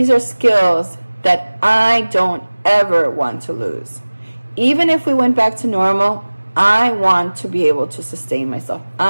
are skills that I don't ever want to lose. Even if we went back to normal, I want to be able to sustain myself.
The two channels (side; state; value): both; inverted; correlation -1.00